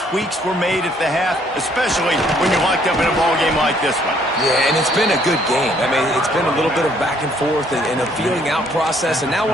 tweaks were made at the half, especially when you're locked up in a ball game like this one. Yeah, and it's been a good game. I mean, it's been a little bit of back and forth and a feeling out process. And now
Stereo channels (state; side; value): normal; both; correlation 0.64